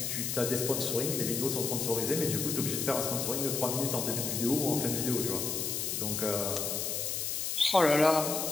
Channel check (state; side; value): noise; left; hiss, 1 dB below the sound